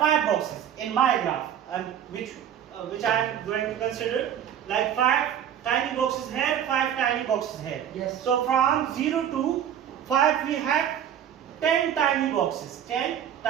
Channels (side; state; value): left; quieter; 9.7 dB